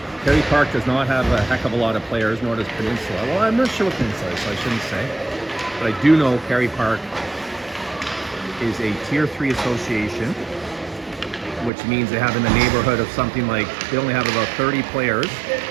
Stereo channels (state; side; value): drops out; left; at 11.7 s